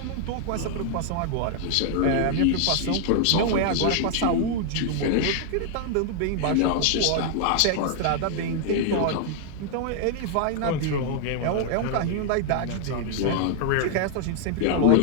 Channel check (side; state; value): both; different; correlation 0.00